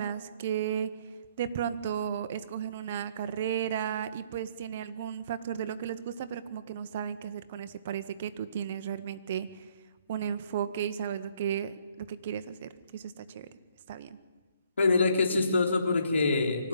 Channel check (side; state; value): both; inverted; correlation -0.65